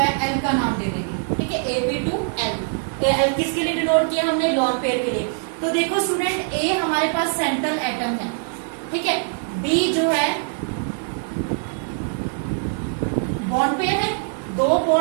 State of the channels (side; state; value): left; silent; 64 dB below the other